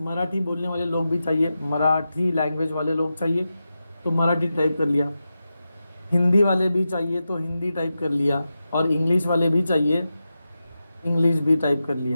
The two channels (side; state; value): both; inverted; correlation -0.91